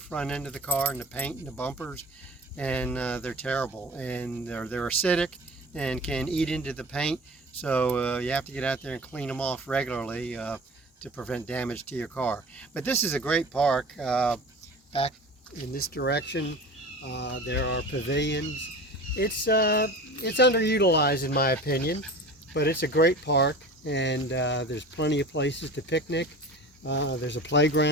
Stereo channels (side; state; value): both; normal; correlation 0.37